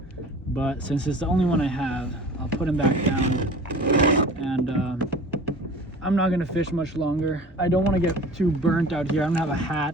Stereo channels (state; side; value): normal; both; correlation 0.41